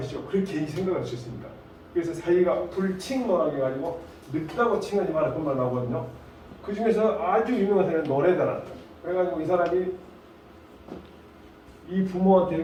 그렇게 생각할 수 있습니다. 그래서 사이가 불칭론하게 해가지고 늙다고 칭하지 마라 그런 말 나오거든요. 그 중에서 아주 유명한 사람은 노래다라. 그래가지고 이 사람이 이 부모한테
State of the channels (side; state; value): both; identical; correlation 1.00